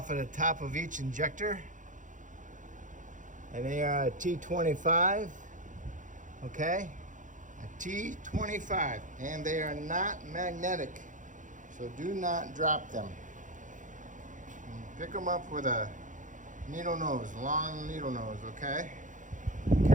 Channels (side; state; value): left; late; 0.37 ms